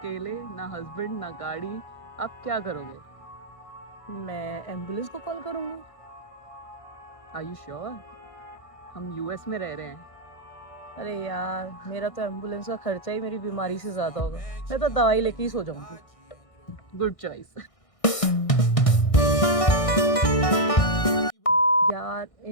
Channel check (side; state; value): right; late; 1.6 ms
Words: ना हस्बैंड ना गाड़ी। आप क्या करोगे? मैं एम्बुलेंस को कॉल करूंगी। Are you sure? हम यूएस में रह रहे हैं। अरे यार, मेरा तो एम्बुलेंस का खर्चा ही मेरी बीमारी से ज्यादा होगा। मैं तो दवाई लेके ही सो जाऊंगी। Good choice. यार,